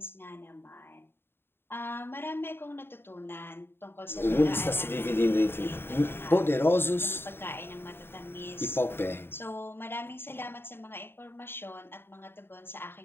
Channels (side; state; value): right; late; 0.11 ms